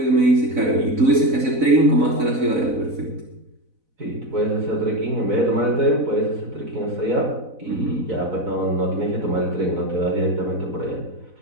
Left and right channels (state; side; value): late; left; 4.0 ms